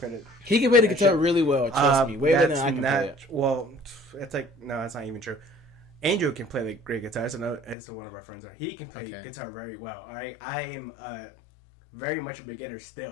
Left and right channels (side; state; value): right; drops out; at 7.8 s